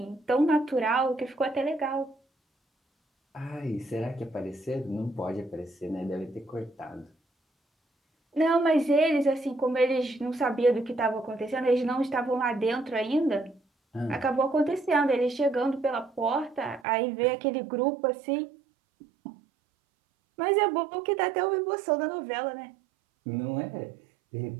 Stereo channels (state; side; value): drops out; left; at 16.9 s